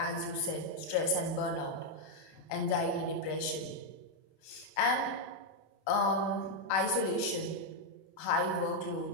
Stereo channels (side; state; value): right; late; 32 ms